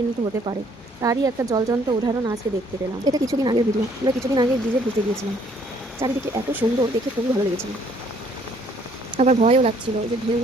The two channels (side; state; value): both; normal; correlation 0.63